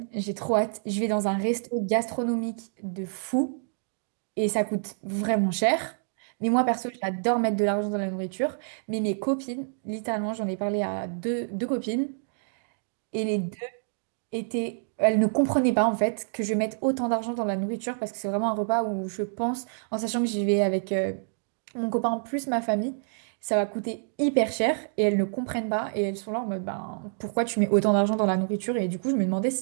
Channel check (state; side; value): silent; left; digital silence